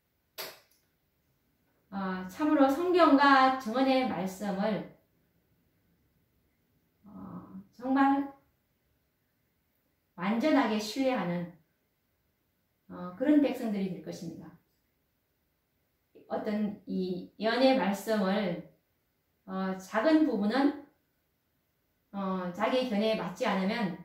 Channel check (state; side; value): identical; both; correlation 1.00